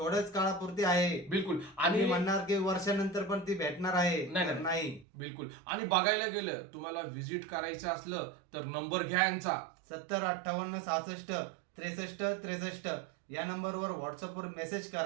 काळापुरती आहे. बिलकुल. आणि आणि म्हणणार की वर्षानंतर पण ती भेटणार आहे, नाही, तर नाही. नाही. बिलकुल. आणि बघायला गेलं तुम्हाला व्हिजिट करायचं असलं तर नंबर घ्या यांचा 70 58 66 63 63 या नंबरवर व्हॉट्सअपवर मेसेज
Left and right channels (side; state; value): left; drops out; at 5.1 s